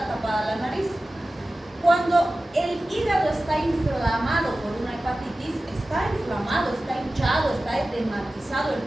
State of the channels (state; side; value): normal; both; correlation 0.96